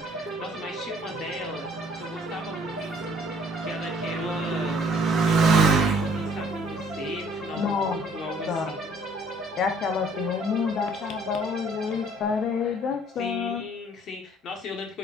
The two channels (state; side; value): normal; both; correlation 0.58